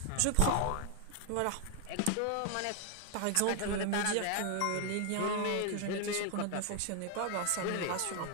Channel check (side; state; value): both; different; correlation 0.00